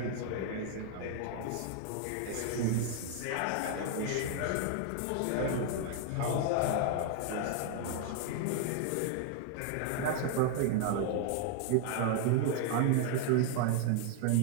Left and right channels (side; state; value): both; different; correlation 0.00